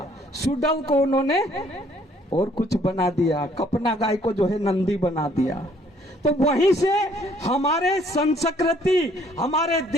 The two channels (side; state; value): both; normal; correlation 0.62